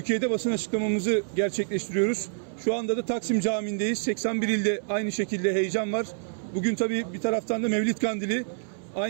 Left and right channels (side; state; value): left; silent; 60 dB below the other